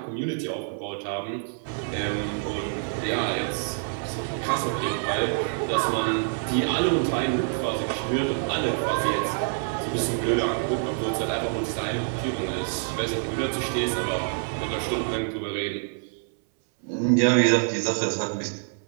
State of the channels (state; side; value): silent; left; 58 dB below the other